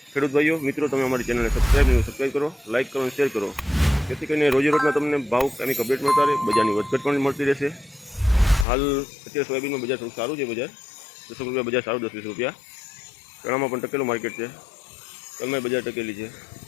ખેડૂત ભાઈઓ મિત્રો, તમે અમારી ચેનલને સબસ્ક્રાઈબ કરો, લાઇક કરો અને શેર કરો, જેથી કરીને રોજે રોજના તમને ભાવ કામિક અપડેટ મળતા રહે, બજારની વધઘટ પણ મળતી રહેશે। હાલ અત્યારે સોયાબીનમાં બજાર થોડું સારું છે, બજાર 10 રૂપિયા બજાર સારું, 10-20 રૂપિયા। ચણામાં પણ ટકેલું માર્કેટ છે, તલમાં બજાર ટકેલી છે।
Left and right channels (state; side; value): drops out; right; at 8.7 s